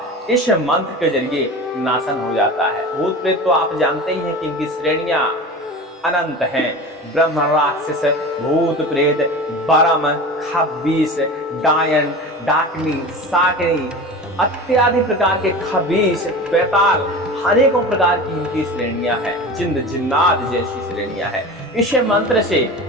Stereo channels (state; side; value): normal; both; correlation 0.32